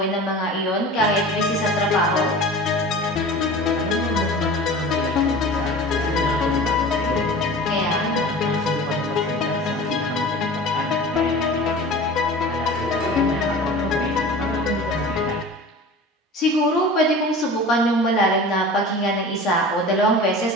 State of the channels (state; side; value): normal; both; correlation 0.38